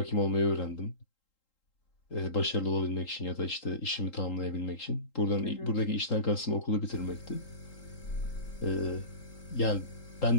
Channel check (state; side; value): late; right; 3.8 ms